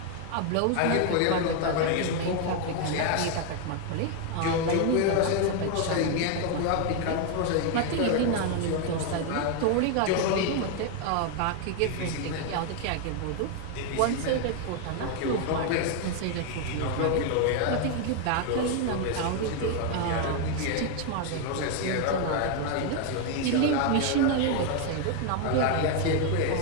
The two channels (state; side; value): different; both; correlation 0.01